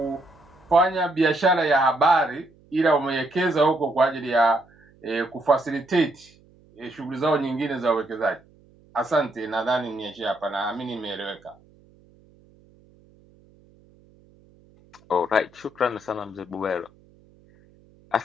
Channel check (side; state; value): right; noise; hum, 29 dB below the sound